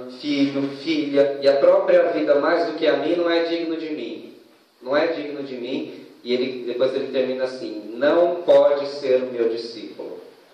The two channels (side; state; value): both; identical; correlation 1.00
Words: filho, filha e a própria vida mais do que a mim, não é digno de mim. Não é digno de mim. E depois ele termina assim: não pode ser o meu discípulo.